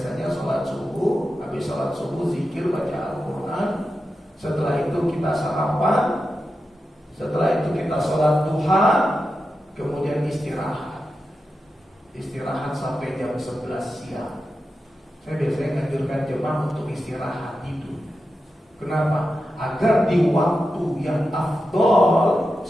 sholat subuh, habis sholat subuh zikir, baca Al-Quran. Setelah itu kita sarapan. Setelah itu kita sholat duha. Kemudian istirahat. Istirahat sampai jam 11 siang. Saya biasanya menganjurkan jemaah untuk istirahat tidur. Kenapa? Agar di waktu yang afdol,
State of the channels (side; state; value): both; normal; correlation 0.90